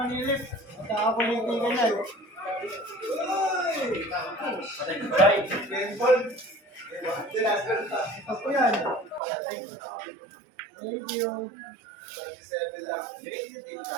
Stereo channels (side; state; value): left; drops out; at 9.2 s